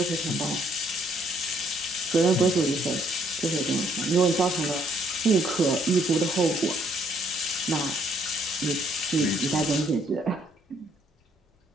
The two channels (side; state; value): both; normal; correlation 0.67